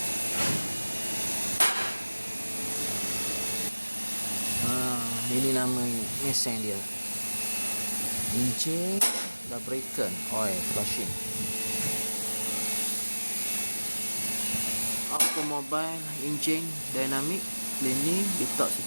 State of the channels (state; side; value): inverted; both; correlation -1.00